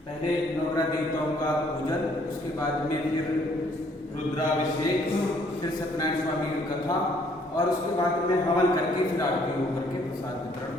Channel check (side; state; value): both; normal; correlation 0.64